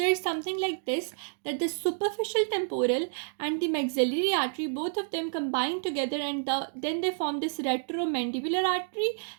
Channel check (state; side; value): silent; left; digital silence